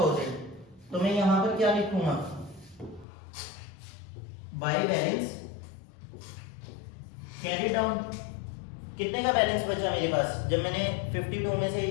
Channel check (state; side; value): drops out; right; at 3.1 s